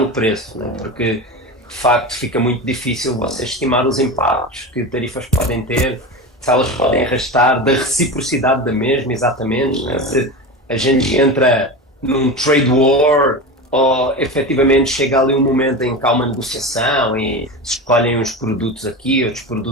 preço, né? Porque de facto fica muito difícil você estimar os impactos que tarifas podem ter, se elas podem arrastar da reciprocidade da mesma, exatamente, né? Se a gente entra num trade war ou efetivamente chega ali um momento em que há uma negociação e se escolhem uns produtos aqui, outros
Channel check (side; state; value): both; normal; correlation 0.25